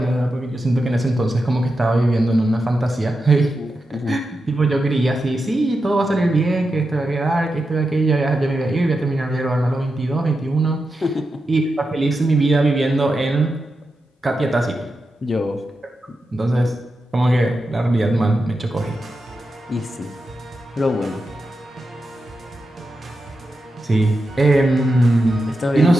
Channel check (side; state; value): both; normal; correlation 0.89